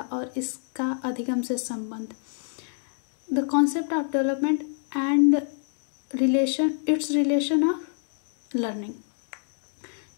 और इसका अधिगम से संबंध, the concept of development and relation of learning.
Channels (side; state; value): right; silent; digital silence